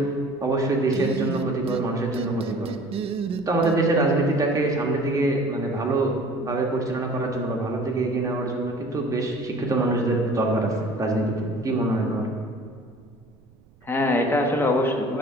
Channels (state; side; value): noise; right; rumble, 29 dB below the sound